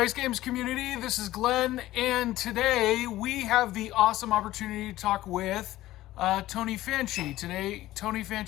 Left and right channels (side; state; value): right; quieter; 15.7 dB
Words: Games community. This is Glenn, and today we have the awesome opportunity to talk with Tony Fanchi. Today, Tony